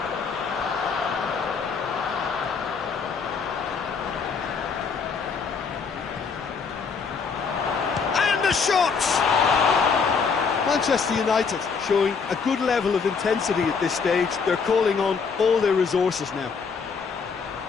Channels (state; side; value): quieter; right; 5.5 dB